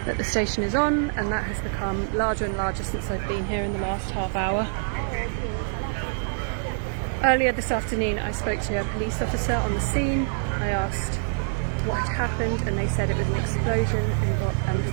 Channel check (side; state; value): left; silent; 61 dB below the other